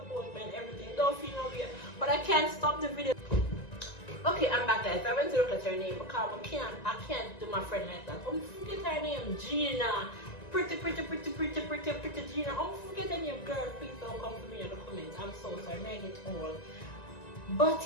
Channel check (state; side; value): late; right; 1.9 ms